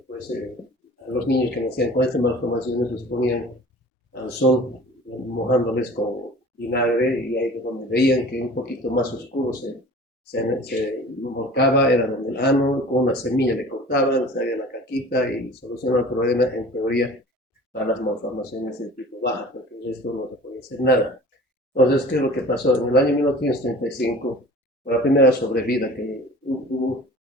pues, a los niños que nacían con estas malformaciones los ponían al sol, mojándoles con vinagre, y ahí donde veían que un poquito más oscuro se volcaba, era donde el ano, con una semilla le cortaban, salía la caquita y solucionaba el problema en teoría para las malformaciones de tipo baja, porque el resto no se podía hacer nada. Entonces, ¿qué es lo que pasó? En el año 1935, por la primera sobrevida que hubo,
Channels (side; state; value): both; normal; correlation 0.43